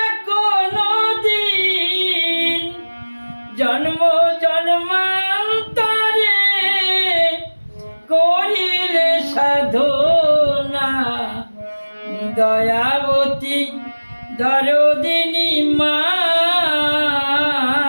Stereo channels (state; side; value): inverted; both; correlation -1.00